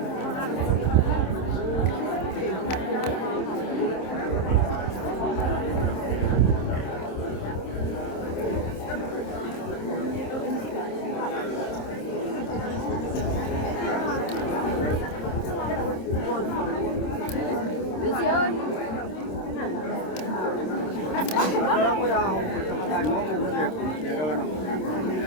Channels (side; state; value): right; late; 26 ms